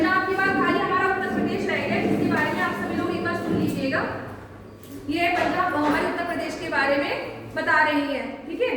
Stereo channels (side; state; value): both; identical; correlation 1.00